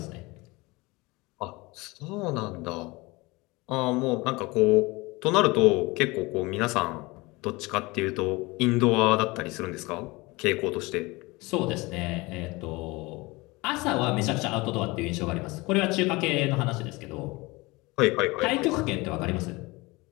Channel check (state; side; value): quieter; right; 23.4 dB